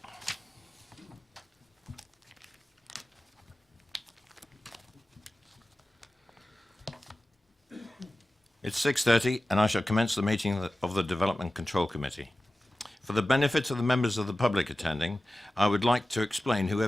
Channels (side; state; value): both; normal; correlation 0.96